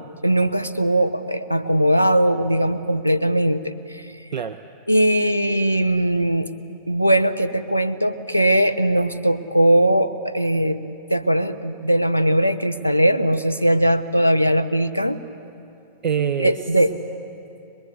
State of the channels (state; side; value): inverted; both; correlation -0.89